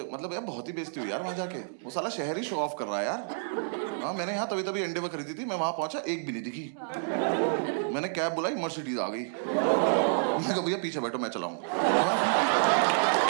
मतलब यार बहुत ही बेइज्जती हुई यार वहां जाके। वो साला शहर ही शो ऑफ कर रहा है यार। हाँ, मैंने यहाँ तभी एंडेवर खरीदी थी, मैं वहां पहुंचा, एक भी नहीं दिखी। मैंने कैब बुलाई, मर्सिडीज आ गई। मैं कहा भैया पीछे बैठो, मैं चलाऊंगा।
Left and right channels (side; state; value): left; silent; digital silence